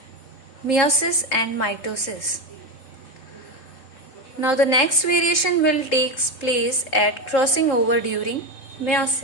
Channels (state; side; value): late; right; 3.8 ms